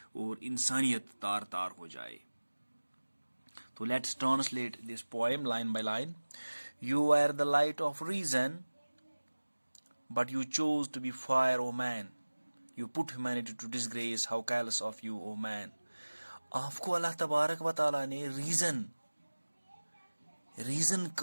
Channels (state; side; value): inverted; both; correlation -1.00